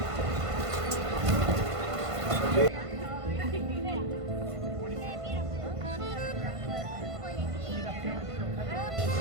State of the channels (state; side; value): late; left; 1.5 ms